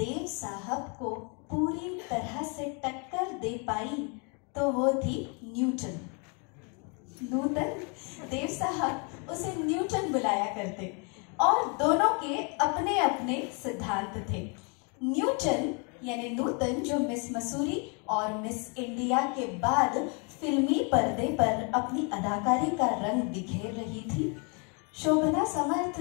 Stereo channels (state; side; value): quieter; right; 35.0 dB